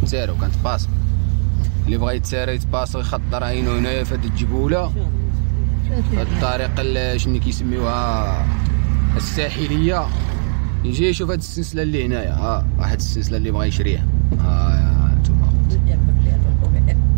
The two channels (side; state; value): left; silent; digital silence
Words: تسارى وكانت باص، اللي بغا يتسارى يتباص يخطر عينو هنايا في هاد الجبوله، هاد الطريق شنو كيسميوها الساحليه، يجي يشوف هاد السلسله اللي هنايا. واحد السلسله اللي بغا يشريها، هانتوما